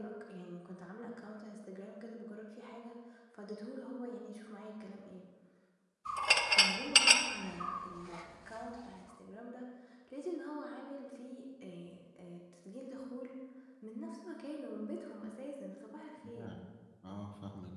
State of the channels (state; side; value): identical; both; correlation 1.00